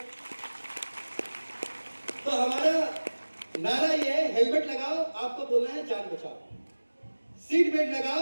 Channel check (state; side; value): inverted; both; correlation -1.00